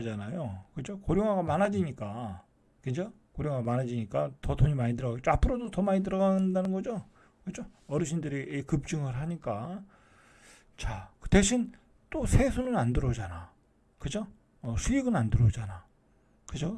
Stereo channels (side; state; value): both; identical; correlation 1.00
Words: 그죠? 고령화가 많아지니까. 그죠? 고령화가 많아지니까 더 돈이 많이 들어가겠죠. 앞으로도 더 많이 들어간다는 거죠. 그죠? 어르신들이 급증을 하니까. 자, 그 대신 또 세수는 안 들어오잖아. 그죠? 수익은 안 들어오잖아. 그죠?